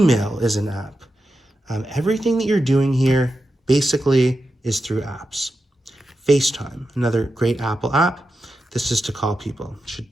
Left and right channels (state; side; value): normal; both; correlation 0.89